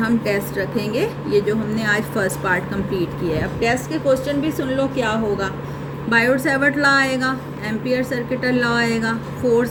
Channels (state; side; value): identical; both; correlation 1.00